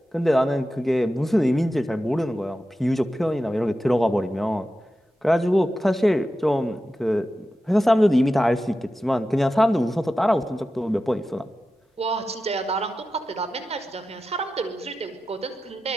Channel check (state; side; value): normal; both; correlation 0.92